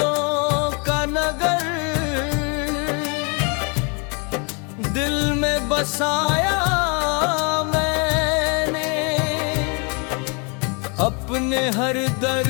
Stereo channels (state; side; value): quieter; right; 34.3 dB